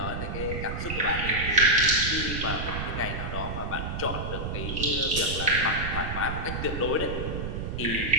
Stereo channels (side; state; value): right; noise; rumble, 4 dB below the sound